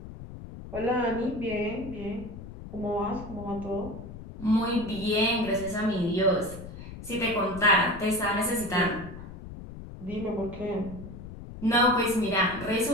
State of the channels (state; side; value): noise; left; rumble, 13 dB below the sound